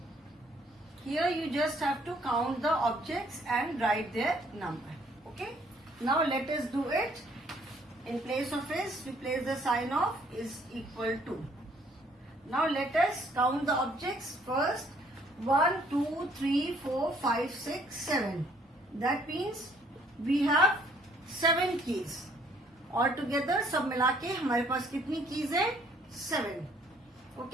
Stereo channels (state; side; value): normal; both; correlation 0.63